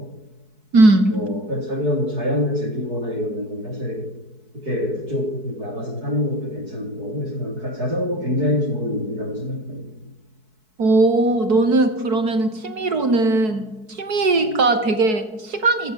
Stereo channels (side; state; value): left; late; 4.6 ms